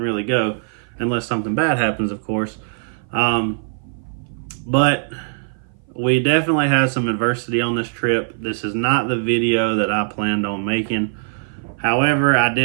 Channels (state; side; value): silent; left; 57 dB below the other